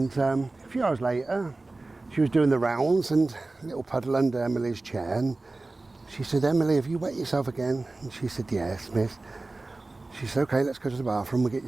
a few hours later, she was doing the rounds and a little puddle under Emily's chair. And she said, Emily, have you wet yourself again? And she said, yes, miss. She said, okay, let's go to the bathroom, we'll get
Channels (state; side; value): quieter; left; 3.2 dB